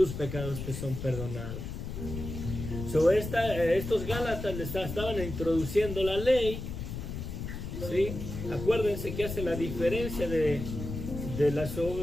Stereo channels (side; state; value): left; noise; rumble, 7 dB below the sound